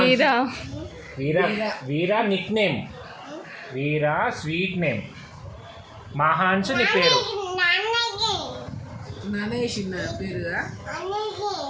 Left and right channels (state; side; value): identical; both; correlation 1.00